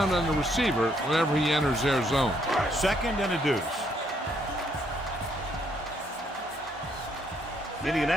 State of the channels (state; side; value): normal; both; correlation 0.71